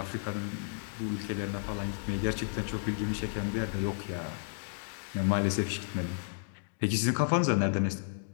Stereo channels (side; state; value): right; silent; digital silence